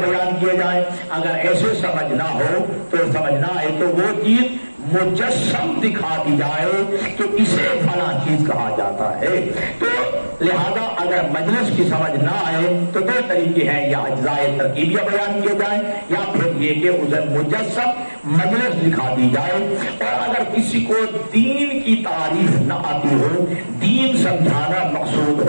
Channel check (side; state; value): both; inverted; correlation -1.00